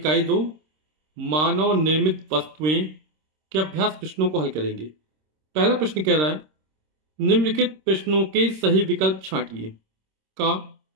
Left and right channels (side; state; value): left; late; 26 ms